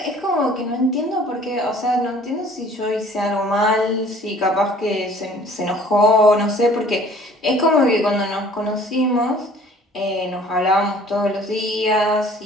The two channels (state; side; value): normal; both; correlation 0.52